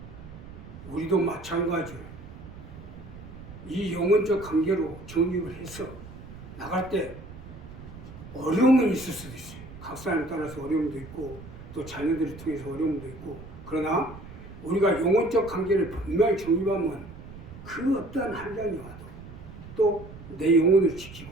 우리도 마찬가지예요. 이 영혼적 관계로 정립을 해서 나갈 때 어려움은 있을 수도 있어요. 각 사람에 따라서 어려움도 있고 또 자녀들을 통해서 어려움도 있고 그러나 우리가 영혼적 관계를 분명히 정립하면 그 어떠한 한량이 와도 또 내 영혼을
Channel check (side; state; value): right; noise; rumble, 15 dB below the sound